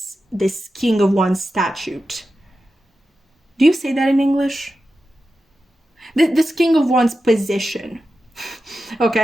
King of Wands statute. Do you say that in English? This King of Wands position.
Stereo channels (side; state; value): both; normal; correlation 0.92